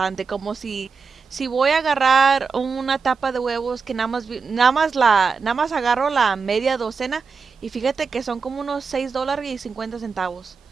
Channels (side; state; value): left; quieter; 5.2 dB